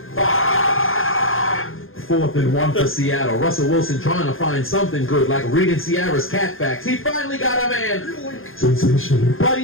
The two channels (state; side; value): late; right; 0.60 ms